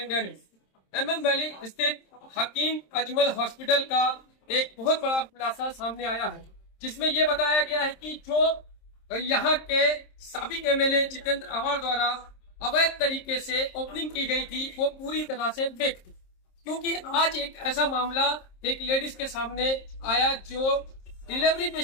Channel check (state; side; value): late; right; 26 ms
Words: न्यूज। MM वैली स्थित हकीम अजमल हॉस्पिटल का एक बहुत बड़ा खुलासा सामने आया है, जिसमें यह बताया गया है कि जो यहाँ के साबिक MLA जितेंद्र अवाड़ द्वारा अवैध तरीके से ओपनिंग की गई थी वो पूरी तरह से फेक थी। क्योंकि आज एक ऐसा मामला एक लेडीज के सामने आया जो डिलीवरी